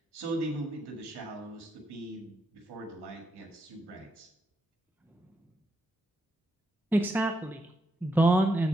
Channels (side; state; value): both; normal; correlation 0.82